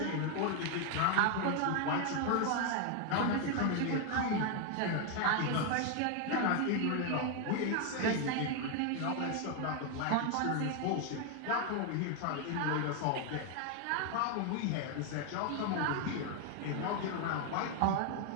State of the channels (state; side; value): different; both; correlation 0.01